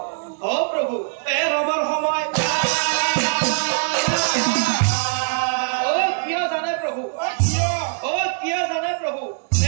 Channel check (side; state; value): left; silent; digital silence